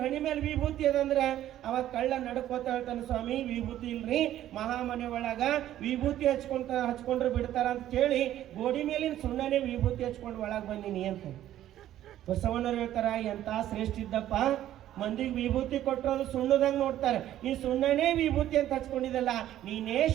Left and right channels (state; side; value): quieter; left; 12.6 dB